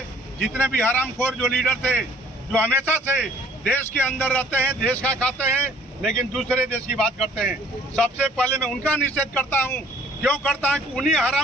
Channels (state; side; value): normal; both; correlation 0.57